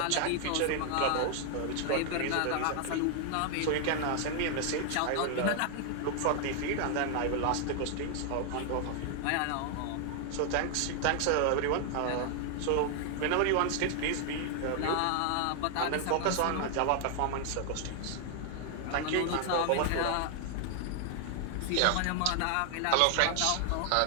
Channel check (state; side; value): different; both; correlation 0.00